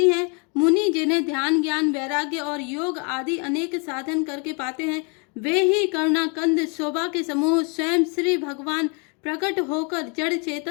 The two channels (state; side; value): quieter; right; 35.0 dB